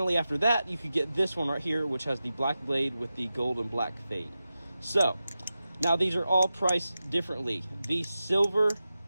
after that, you could get this one right here, which has the black blade with the gold and black fade. So, now these are all priced differently. The silver,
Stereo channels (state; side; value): inverted; both; correlation -0.93